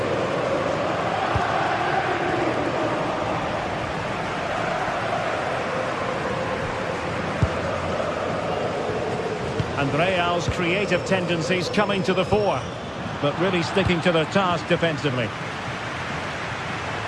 And Real's creative tendencies coming to the fore, but really sticking to their task defensively.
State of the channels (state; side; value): identical; both; correlation 1.00